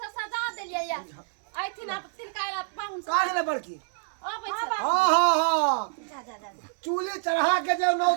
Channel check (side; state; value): left; silent; digital silence